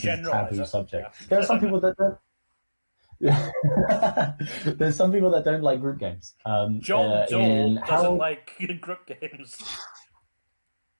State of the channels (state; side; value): inverted; both; correlation -1.00